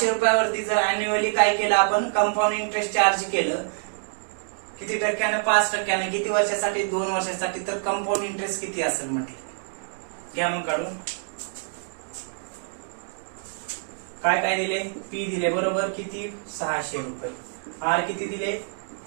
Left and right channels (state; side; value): silent; left; digital silence